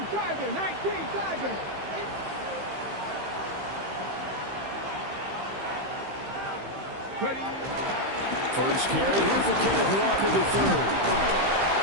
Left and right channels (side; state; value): left; late; 15 ms